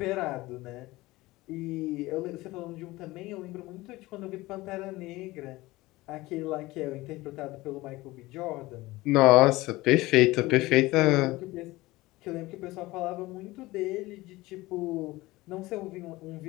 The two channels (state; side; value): quieter; right; 19.6 dB